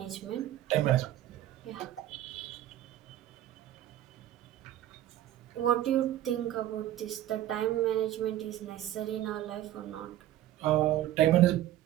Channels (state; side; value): quieter; left; 13.2 dB